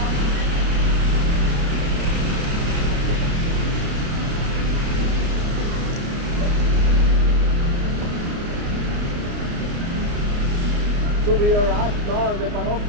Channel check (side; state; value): left; late; 29 ms